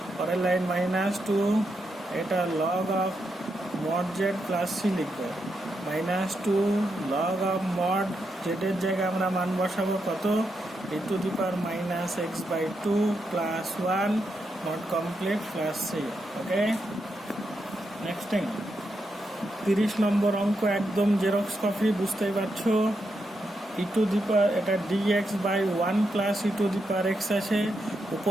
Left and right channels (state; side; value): normal; both; correlation 0.83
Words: পরের লাইন মাইনাস 2 এটা log of mod z plus c লিখবে, মাইনাস 2 লগ অফ মড জেডের জায়গায় আমরা মান বসাবো কত, e to the power minus x by 2 plus 1 not complete plus c. Okay, next thing 30 number অঙ্ক একদম জেরক্স কপি, বুঝতেই পারছো। ই টু দি পাওয়ার এটা dx by 1 plus e to the power x আছে,